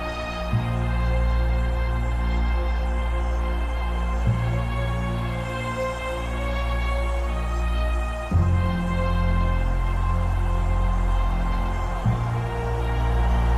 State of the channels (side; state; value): both; identical; correlation 1.00